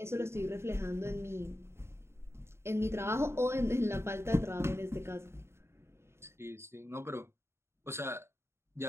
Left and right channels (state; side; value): late; left; 0.12 ms